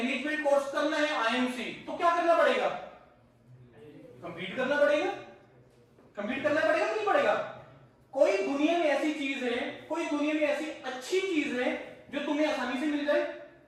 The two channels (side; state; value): both; identical; correlation 1.00